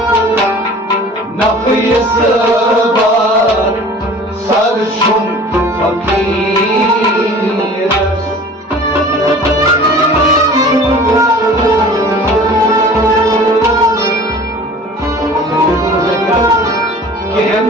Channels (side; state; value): both; normal; correlation 0.44